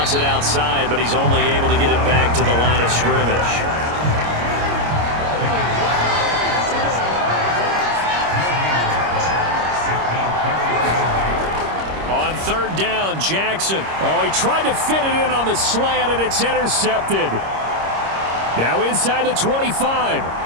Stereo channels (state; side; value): late; left; 26 ms